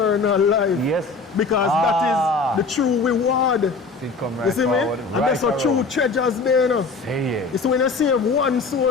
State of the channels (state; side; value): quieter; right; 4.1 dB